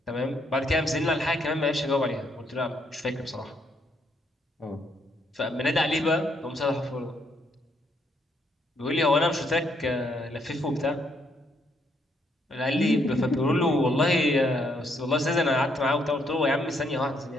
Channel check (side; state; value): both; normal; correlation 0.72